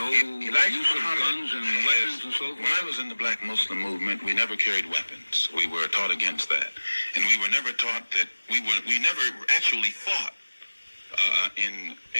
use of guns and weapons and so forth? When I was in the Black Muslim movement, we never carried weapons. We were taught against that. And we were never taught that we never actually fought at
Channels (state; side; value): inverted; both; correlation -1.00